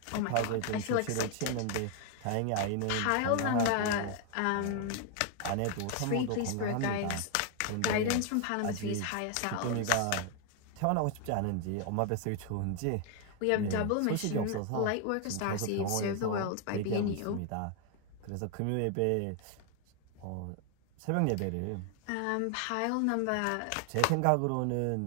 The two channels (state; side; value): different; both; correlation 0.00